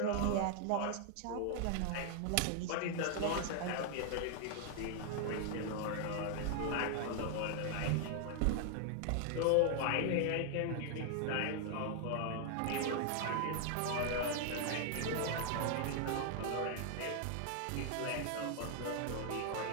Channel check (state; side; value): different; both; correlation 0.00